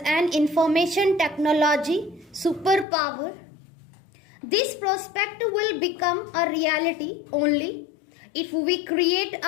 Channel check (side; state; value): right; drops out; at 2.9 s